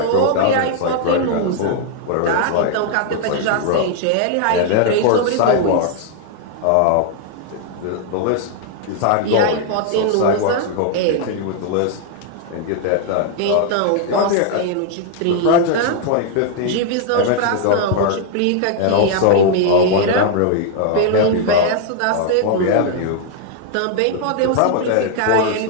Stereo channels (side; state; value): both; different; correlation 0.00